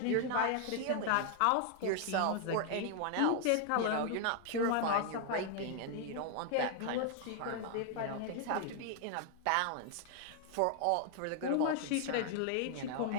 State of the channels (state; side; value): different; both; correlation 0.00